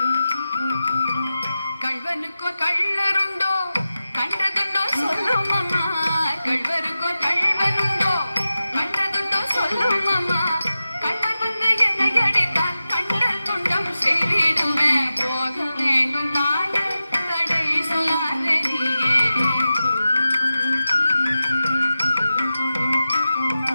கள்வனுக்கோ கள்ளருண்டோ கண்டதுண்டோ சொல்லும் அம்மா. கள்வருக்கோ கள்வனுண்டோ கண்டதுண்டோ சொல்லும் அம்மா. கள்வர் வந்து என்னை அடித்தால் கண்டல் துண்டம் செய்திடுவேன். போக வேண்டும் தாயே தடை சொல்லாதே நீயே.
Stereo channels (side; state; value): both; inverted; correlation -0.93